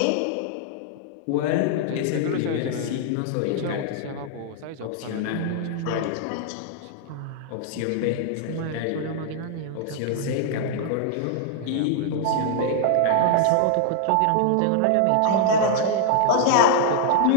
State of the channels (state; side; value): different; both; correlation -0.01